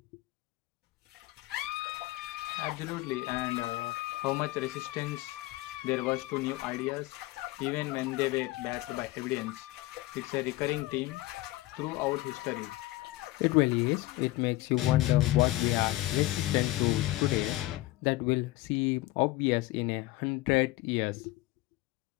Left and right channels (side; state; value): right; quieter; 18.3 dB